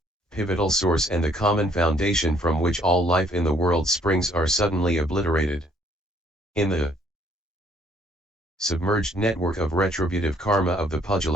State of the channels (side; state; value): both; normal; correlation 0.64